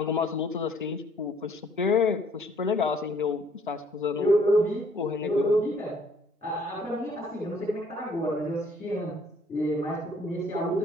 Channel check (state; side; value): normal; both; correlation 0.61